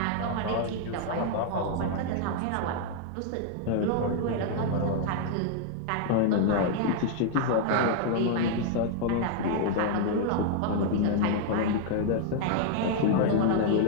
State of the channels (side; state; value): both; different; correlation 0.00